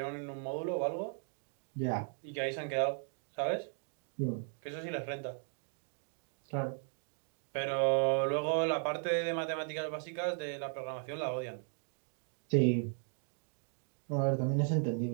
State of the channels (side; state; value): left; silent; 53 dB below the other